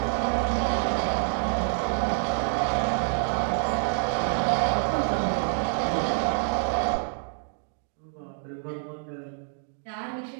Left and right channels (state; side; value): silent; left; 60 dB below the other